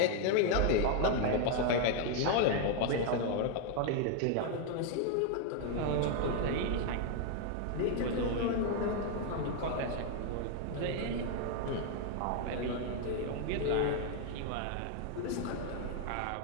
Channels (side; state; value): both; different; correlation 0.01